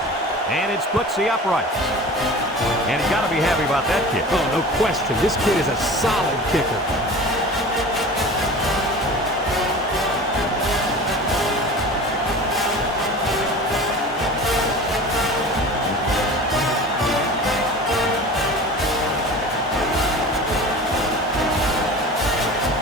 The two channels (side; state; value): both; normal; correlation 0.37